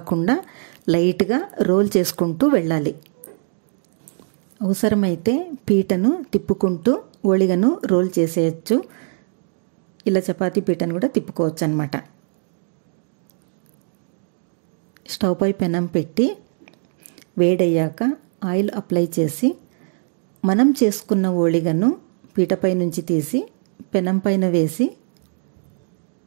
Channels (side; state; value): left; silent; 61 dB below the other